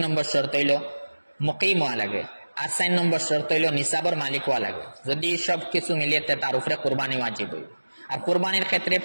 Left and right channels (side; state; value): both; inverted; correlation -1.00